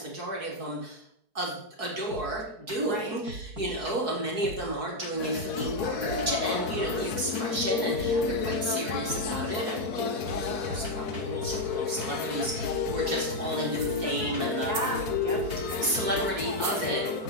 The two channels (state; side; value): late; left; 4.6 ms